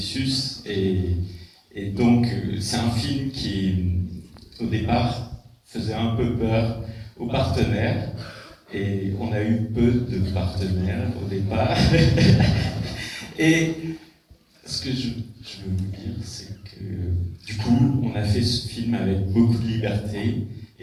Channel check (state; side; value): identical; both; correlation 1.00